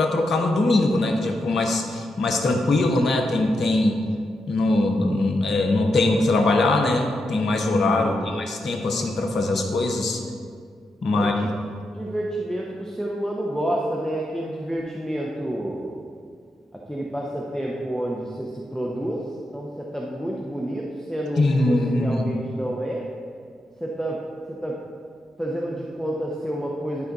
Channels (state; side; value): normal; both; correlation 0.85